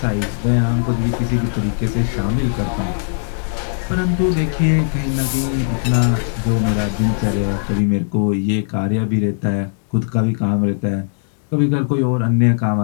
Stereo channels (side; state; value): right; silent; digital silence